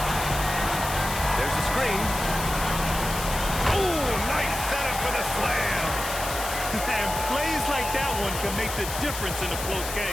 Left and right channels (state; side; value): noise; left; hiss, 7 dB below the sound